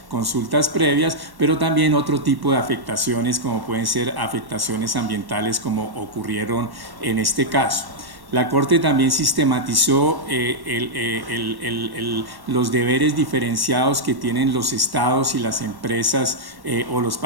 consultas previas, pero también otro tipo de afectaciones como pueden ser afectaciones ambientales como ocurrieron en este caso. La Corte también sistematizó los deberes diferenciados que tienen los estados y las empresas o los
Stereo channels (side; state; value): left; late; 1.1 ms